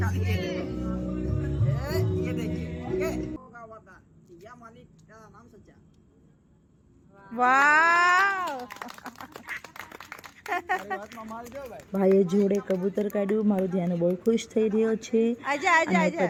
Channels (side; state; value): both; identical; correlation 1.00